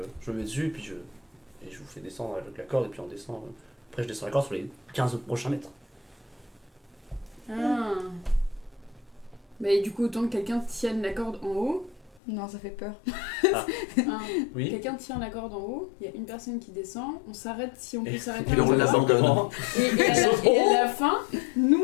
je me mets dessus et puis je vous fais descendre avec la corde et puis on descend. Après, je descends la corde sur les 15 prochains mètres. Ah. Mais du coup, autant que quelqu'un tienne la corde en haut. Non, ça fait peur. Hein. Oui. Quelqu'un tient la corde en haut, il y a une personne qui descend, on s'arrête si on peut Et s'arrêter. puis un on peu. l'abandonne. Et à la fin, nous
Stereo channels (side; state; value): right; drops out; at 12.2 s